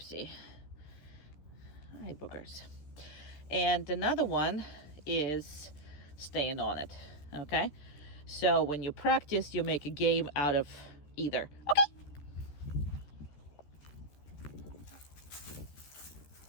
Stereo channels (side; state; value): right; late; 14 ms